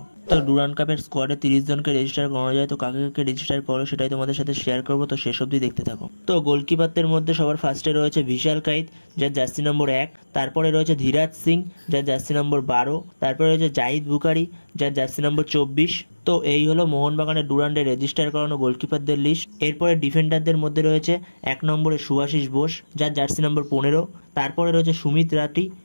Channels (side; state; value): both; inverted; correlation -1.00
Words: তো ডুরান্ড কাপের স্কোয়াডে 30 জনকে রেজিস্টার করা যায়। তো কাকে কাকে রেজিস্টার করো সেটাই তোমাদের সাথে শেয়ার করবো, তো শেষ অবধি দেখতে থাকো। তো গোলকিপারদের মধ্যে সবার ফার্স্টে রয়েছে বিশাল কাইত, যার জার্সি নম্বর 1। তারপরে রয়েছে ধীরাজ সিং, যার জার্সি নম্বর 12। তারপরে রয়েছে জাহিদ বুখারি, যার জার্সি নম্বর 24। তো এই হলো মোহনবাগানের ডুরান্ডে রেজিস্টার করানো গোলকিপারদের লিস্ট। এরপরে ডিফেন্ডারদের মধ্যে রয়েছে 1 নম্বরে শুভাশিস বোস, যার জার্সি নম্বর 15। তারপরে রয়েছে সুমিত রাঠি,